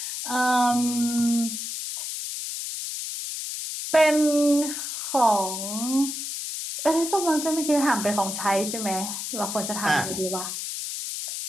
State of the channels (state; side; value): noise; left; hiss, 5 dB below the sound